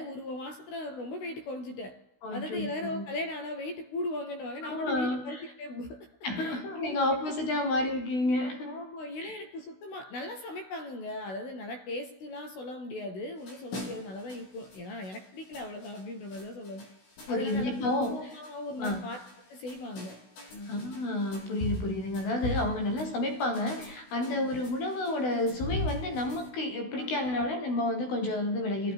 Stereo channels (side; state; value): right; late; 16 ms